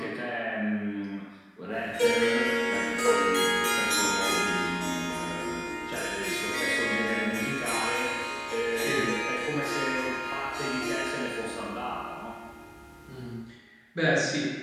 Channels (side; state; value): both; identical; correlation 1.00